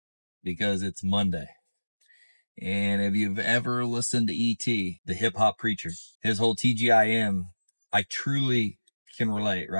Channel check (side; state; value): both; inverted; correlation -1.00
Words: because it's Monday. And if you've ever listened to E.T., the hip hop preacher, his whole TGIM, I truly can relate,